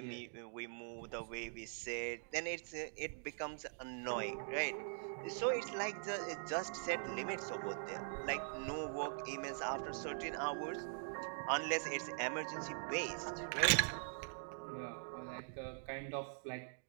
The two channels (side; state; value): left; silent; digital silence